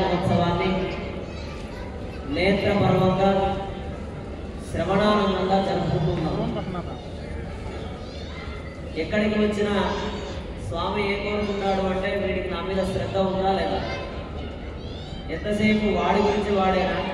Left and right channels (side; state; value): both; identical; correlation 1.00